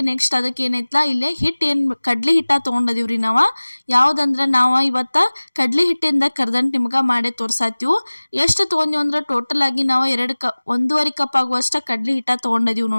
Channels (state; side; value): inverted; both; correlation -1.00